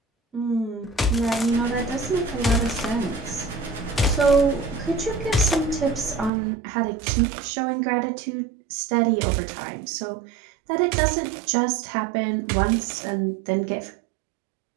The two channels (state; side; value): drops out; left; at 6.3 s